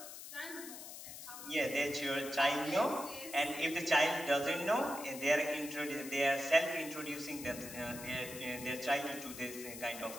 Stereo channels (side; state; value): left; noise; hiss, 11 dB below the sound